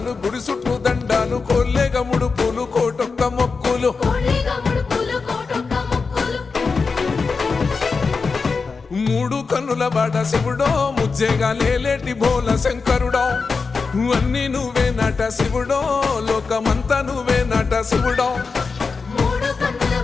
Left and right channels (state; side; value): quieter; right; 4.7 dB